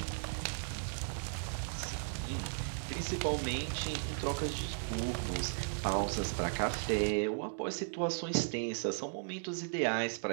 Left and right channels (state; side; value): silent; left; digital silence